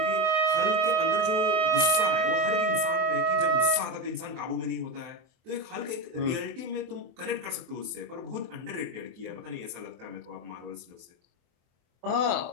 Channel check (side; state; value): left; late; 24 ms